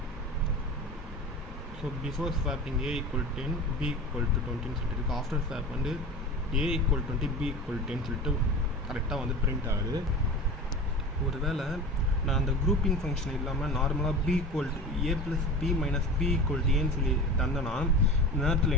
So before swapping A equal 10 B equal to 20 சொல்லிட்டு இருக்குது. ஆஃப்டர் ஸ்வாப் வந்து ஏ ஈக்குவல் 20 பி ஈக்குவல் 10 சொல்லிட்டு கரெக்டாக வந்து பிரிண்ட் ஆகுது. ஒருவேளை நான் அந்த குரூப்பிங் ஃபங்க்ஷன் இல்லாமல் நார்மலாக B equal to A plus B minus B equal to ஏன்னு சொல்லி தந்தேன்னா இந்த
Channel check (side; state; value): both; normal; correlation 0.33